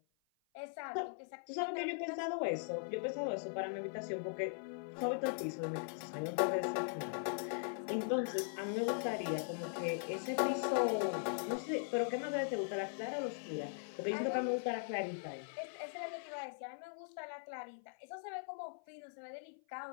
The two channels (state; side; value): silent; right; 51 dB below the other